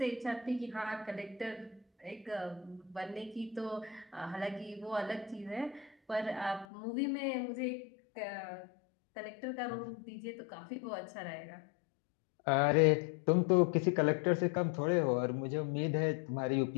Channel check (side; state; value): right; drops out; at 6.7 s